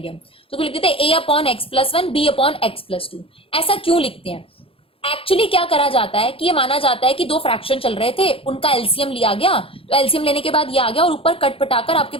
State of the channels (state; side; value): late; right; 0.27 ms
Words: हम, तो लिख देते हैं a upon X plus 1 b upon X plus 2। ऐसा क्यों लिखते हैं? एक्चुअली क्या करा जाता है कि ये माना जाता है कि 2 फ्रैक्शन चल रहे थे, उनका एलसीएम लिया गया, तो एलसीएम लेने के बाद ये आ गया और ऊपर कट पटाकर आपके